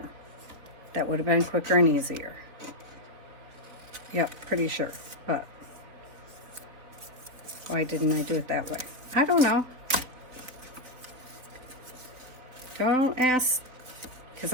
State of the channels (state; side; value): late; left; 4.0 ms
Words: That would have been quicker and easier. Yep, pretty sure. But why didn't I do it that way? I don't know. Don't ask, because